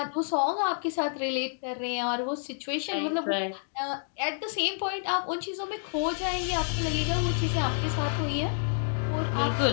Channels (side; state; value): right; silent; digital silence